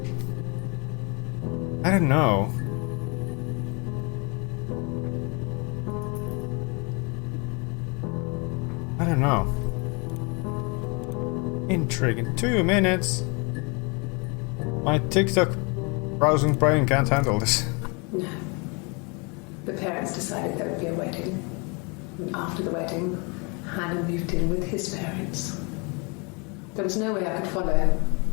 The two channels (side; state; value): right; quieter; 31.4 dB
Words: I don't know. I don't know. Intriguing. 2 minutes. My TikTok browsing brain can't handle this. No. The parents decided there would be a wedding. And after the wedding, Hannah moved in with his parents. There was no way I could follow,